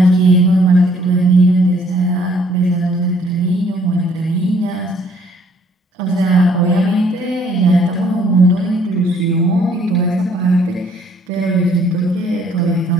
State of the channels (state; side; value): normal; both; correlation 0.63